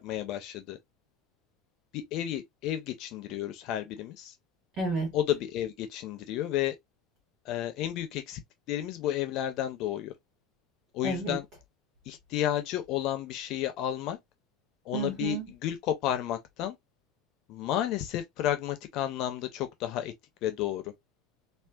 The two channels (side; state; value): right; quieter; 8.6 dB